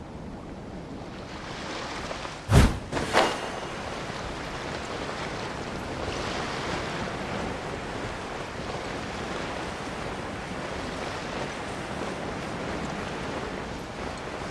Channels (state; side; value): identical; both; correlation 1.00